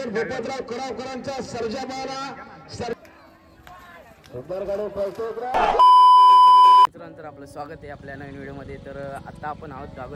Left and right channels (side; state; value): both; identical; correlation 1.00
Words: भूपतराव करावकरांचा सर्जा मारा मित्रांनो, आपलं स्वागत आहे आपल्या नवीन व्हिडिओमध्ये। तर आता आपण आहोत